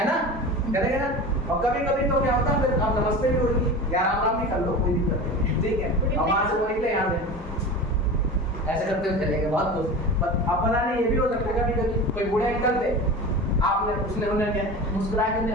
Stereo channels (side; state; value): both; normal; correlation 0.31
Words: ना, करेंगे ना। और कभी कभी तो क्या होता है, फिर आप नमस्ते भी होगी, या राम राम भी कर लो, कोई दिक्कत नहीं, ठीक है। और वहां से वो निकले यहाँ से ऐसे करते हुए चले गए, बहुत कुछ। अब पता नहीं ये भी हो सकता है कभी कभी कोई बूढ़े अंकल थे, आपने उसने उन्हें क्या मुस्कुरा के